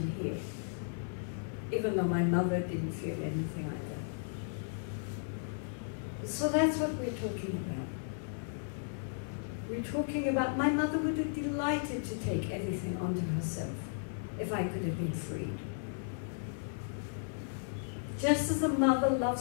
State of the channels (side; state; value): right; silent; 54 dB below the other